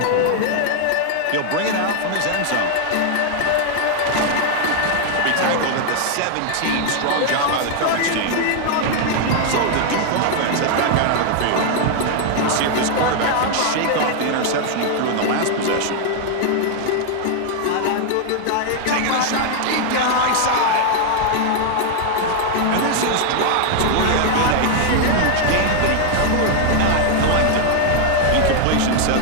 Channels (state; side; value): different; both; correlation 0.00